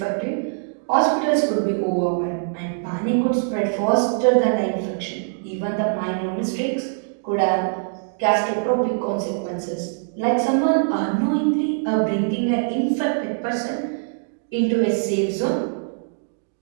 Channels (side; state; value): left; silent; digital silence